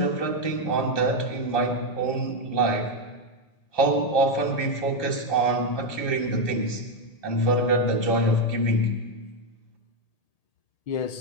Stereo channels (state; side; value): late; right; 1.8 ms